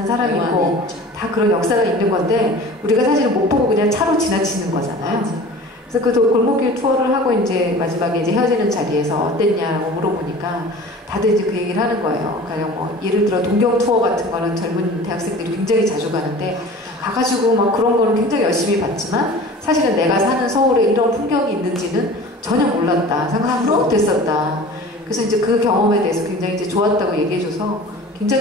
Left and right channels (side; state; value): both; normal; correlation 0.41